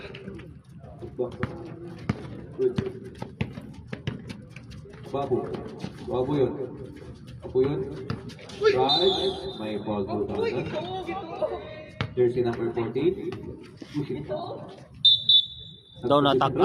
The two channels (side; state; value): both; identical; correlation 1.00